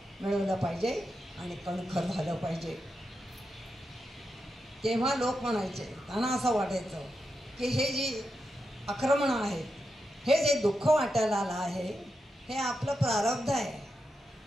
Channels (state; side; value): normal; both; correlation 0.87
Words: मिळवलं पाहिजे आणि कणखर झालं पाहिजे. तेव्हा लोक म्हणायचे, त्यांना असं वाटायचं की हे जी आक्रमणं आहेत, हे जे दुःख वाटायला आलं आहे, हे आपलं प्रारब्ध आहे.